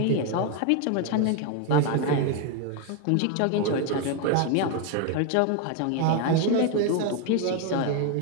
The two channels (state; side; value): different; both; correlation 0.01